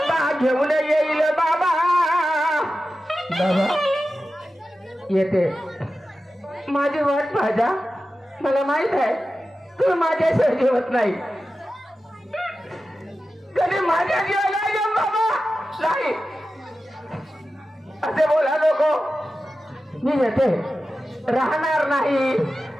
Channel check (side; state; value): both; normal; correlation 0.93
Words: घेऊन येईल बाबा. बाबा येते. माझी वाट पाहता. मला माहित आहे तुम्ही माझ्याशिवाय जेवत नाही. कधी माझ्या जेवायला बाबा नाही असे बोला नको. मी येते. राहणार नाही,